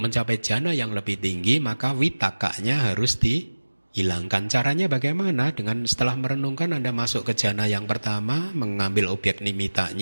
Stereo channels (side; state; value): both; inverted; correlation -1.00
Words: mencapai jana yang lebih tinggi, maka vitakanya harus dihilangkan. Caranya bagaimana? Dengan setelah merenungkan Anda masuk ke jana yang pertama, mengambil objek